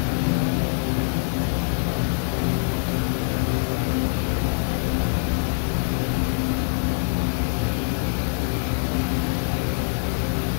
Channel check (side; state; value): right; silent; 58 dB below the other